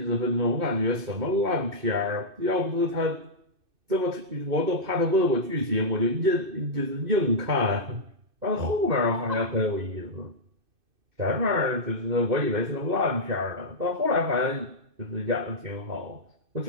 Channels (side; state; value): left; late; 2.6 ms